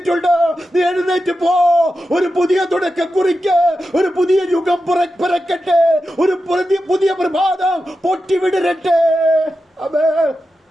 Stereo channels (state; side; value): normal; both; correlation 0.90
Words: നീ എഴുന്നേറ്റ് പോ. ഒരു പുതിയ തുടക്കം കുറിക്ക്. ഒരു പുതിയ യുഗം പിറക്കട്ടെ. ഒരു പുതിയ പ്രഭാതം പൊട്ടിവിടരട്ടെ. Amen.